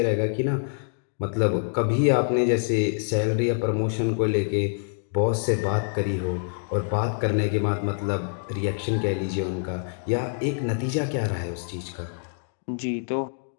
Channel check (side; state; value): right; silent; digital silence